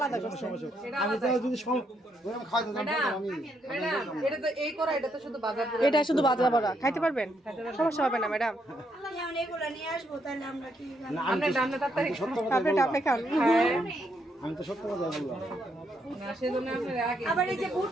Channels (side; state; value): both; normal; correlation 0.76